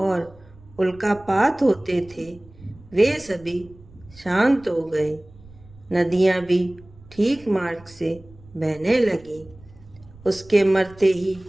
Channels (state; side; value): noise; right; rumble, 23 dB below the sound